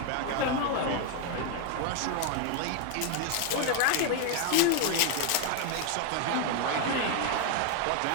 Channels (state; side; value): different; both; correlation 0.01